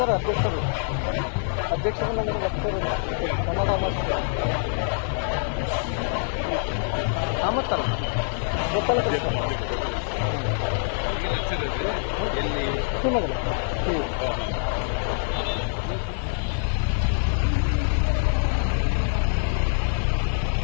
ಅಧ್ಯಕ್ಷರು ಅಧ್ಯಕ್ಷರನ್ನ ಬರ್ತಿರೋದು ಕನ್ನಡ ಕಾಮತ್ತಲ್ಲ ಗೊತ್ತಲ್ಲ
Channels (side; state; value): right; silent; digital silence